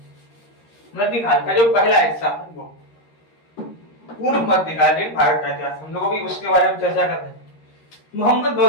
मध्यकाल का जो पहला हिस्सा है वो पूर्व मध्यकालीन भारत का इतिहास। हम लोग भी उसके बारे में चर्चा करते हैं। मोहम्मद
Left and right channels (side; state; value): right; late; 13 ms